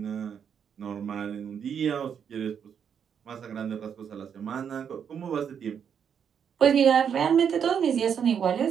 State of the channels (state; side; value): quieter; left; 7.7 dB